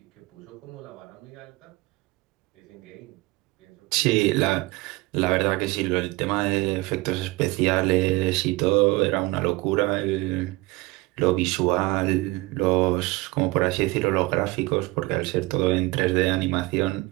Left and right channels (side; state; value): left; quieter; 21.5 dB